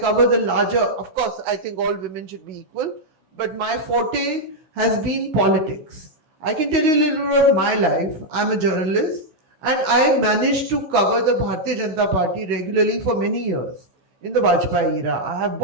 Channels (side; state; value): left; late; 16 ms